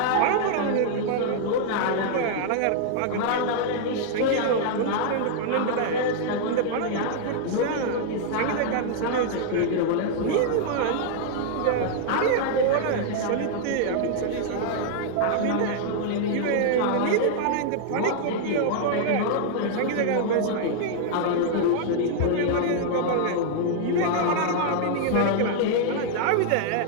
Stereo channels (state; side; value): different; both; correlation 0.00